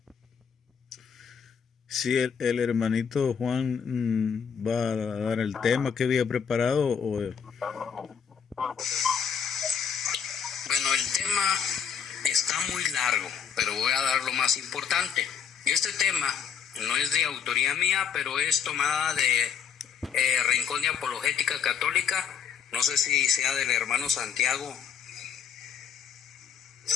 Sí, el hermanito Juan va a dar el tema que había preparado. Bueno, el tema está muy largo, pero voy a dar lo más importante. Este tema no es de autoría mía, pero es tomada de Rincón de Apologética Católica. No sé si sea del hermano Santiago.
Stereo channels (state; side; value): quieter; right; 7.4 dB